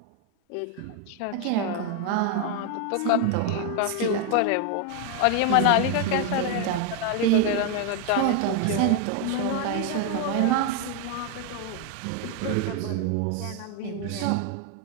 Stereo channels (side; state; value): both; different; correlation 0.01